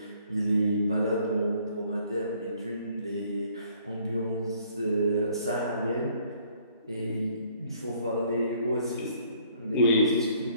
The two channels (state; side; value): inverted; both; correlation -0.62